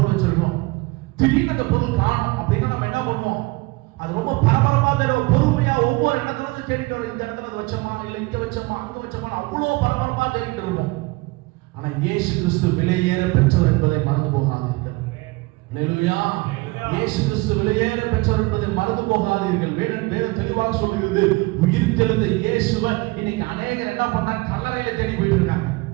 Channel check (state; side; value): quieter; left; 23.3 dB